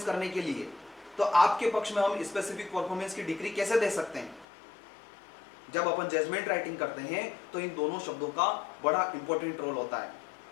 करने के लिए, तो आपके पक्ष में हम स्पेसिफिक परफॉर्मेंस की डिग्री कैसे दे सकते हैं? जब अपन जजमेंट राइटिंग करते हैं तो इन दोनों शब्दों का बड़ा इंपॉर्टेंट रोल होता है।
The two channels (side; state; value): right; drops out; at 4.5 s